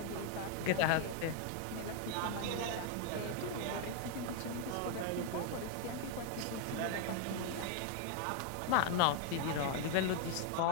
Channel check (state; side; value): different; both; correlation 0.00